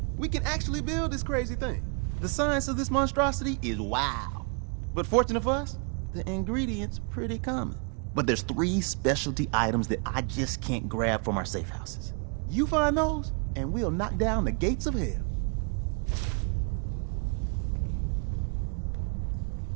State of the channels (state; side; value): quieter; left; 37.9 dB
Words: We can actually build this crazy thing. The science of this monstrosity is wow. But fortunate for us, the ingredients pretty common. But there's 3 specialty items that I just can't grab from our safe houses. You find those, and we'll knock down the gates of hell.